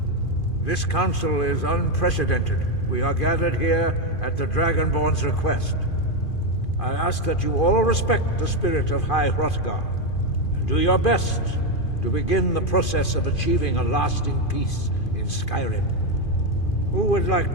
This council is unprecedented. We are gathered here at the Dragonborn's request. I ask that you all respect the spirit of High Hrothgar, and do your best to begin the process of achieving a lasting peace in Skyrim. Who would like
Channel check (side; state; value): right; late; 2.5 ms